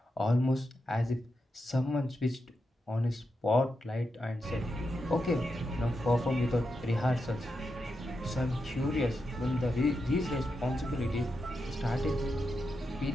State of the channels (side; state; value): both; normal; correlation 0.87